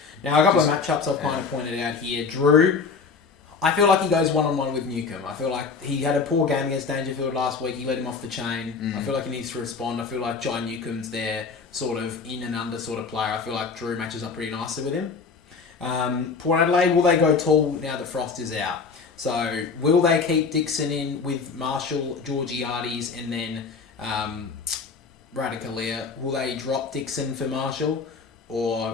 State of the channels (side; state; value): right; quieter; 5.0 dB